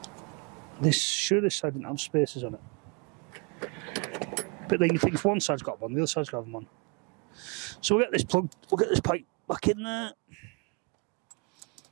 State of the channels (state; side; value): quieter; left; 33.4 dB